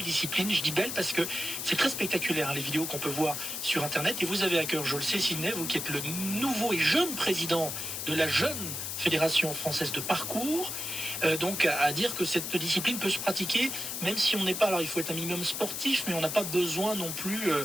Je dis belle parce que c'est très spectaculaire, hein, les vidéos qu'on peut voir sur Internet. Et vous avez à cœur, je le sais Sydney, vous qui êtes le nouveau et jeune président de la jeune Fédération française de parcours, donc à dire que cette discipline peut se pratiquer, même si on n'est pas, alors il faut être un minimum sportif, mais on n'a pas besoin non plus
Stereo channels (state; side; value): noise; left; hiss, 4 dB below the sound